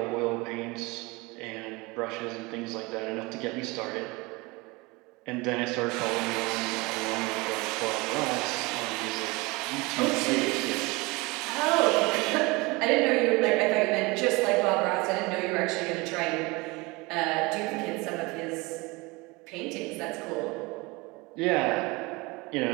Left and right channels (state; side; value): quieter; left; 24.5 dB